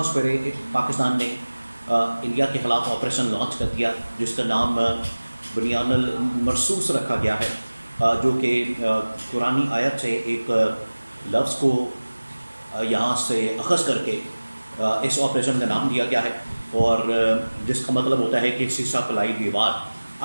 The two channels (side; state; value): both; inverted; correlation -1.00